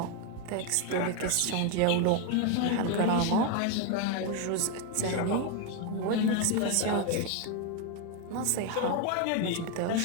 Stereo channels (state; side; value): different; both; correlation 0.01